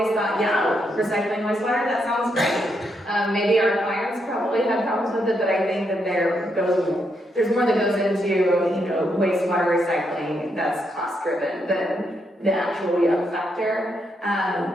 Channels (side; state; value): both; normal; correlation 0.79